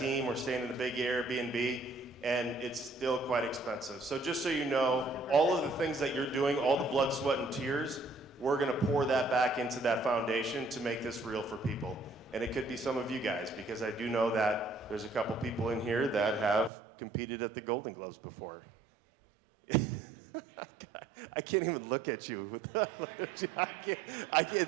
We're staying in a big Airbnb, and it's still quite expensive. So just so you know, all of the things that you're doing, all the blood, sweat, and tears, we're gonna pour that back into that foundation to make this real for people. And it could be some of you guys, because I do know that there's a couple people in here that have competed at the Golden Gloves before. I can't even look at you. I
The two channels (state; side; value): drops out; left; at 16.7 s